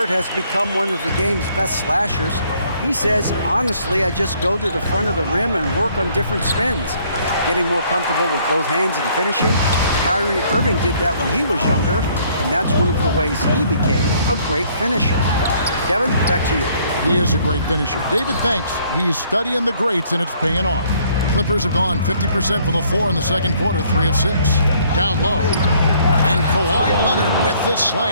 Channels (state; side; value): inverted; both; correlation -0.63